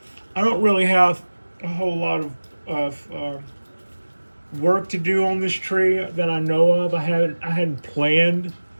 don't really have a whole lot of work to do on this tree that I know of. I hadn't planned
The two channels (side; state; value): both; inverted; correlation -1.00